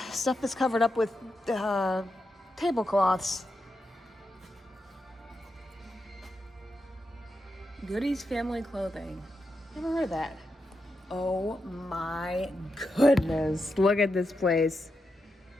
stuff that's covered up with tablecloths. Goody's Family Clothing. Never heard of that. Oh my goodness. Look at this place.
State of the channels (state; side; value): normal; both; correlation 0.86